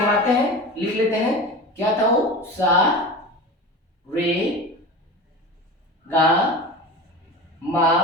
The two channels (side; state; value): both; normal; correlation 0.31